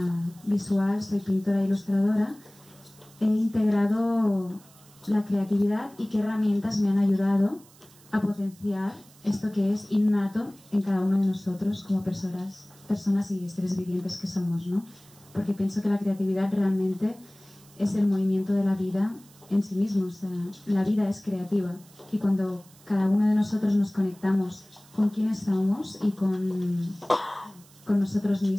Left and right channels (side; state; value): right; noise; hiss, 26 dB below the sound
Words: visual, soy pintora e ilustradora, he integrado la creatividad y qué herramientas me han ayudado a potenciar esto que es innato en cada uno de nosotros como personas y seres vivientes que somos, ¿no? Porque pienso que la creatividad realmente es el movimiento de la vida en sí mismo, o sea, la vida es creativa y cuando cada uno de nosotros nos conectamos con quienes somos y con nosotros